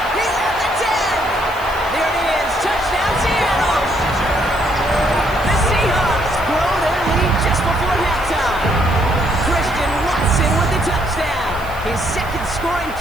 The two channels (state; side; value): noise; right; hiss, 21 dB below the sound